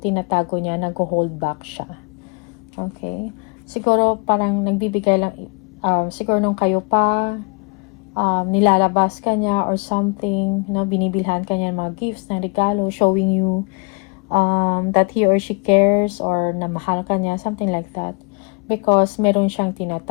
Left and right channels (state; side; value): quieter; right; 32.2 dB